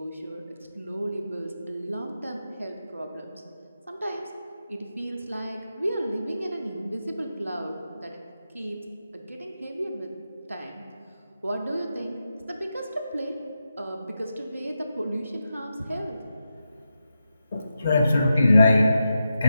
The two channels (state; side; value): inverted; both; correlation -0.88